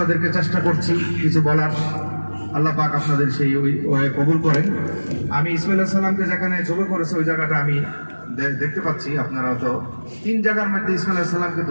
চেষ্টা করছি কিছু বলার। আল্লাহ পাক আপনাদের সেই ওই কবুল করেন। আমি ইসমাইল আলাইহিস সালামকে যেখানে জবে করেছে ওই জায়গাটা আমি দেখতে পাচ্ছি। আপনারা তো 3 জায়গার মধ্যে ইসমাইল আলাইহিস সালামকে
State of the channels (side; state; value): both; inverted; correlation -1.00